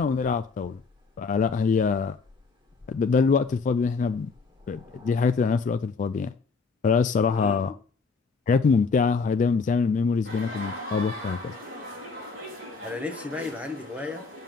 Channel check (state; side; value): quieter; right; 4.8 dB